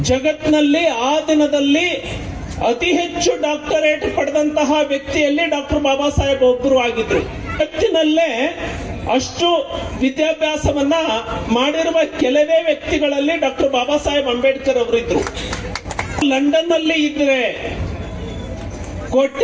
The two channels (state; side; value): identical; both; correlation 1.00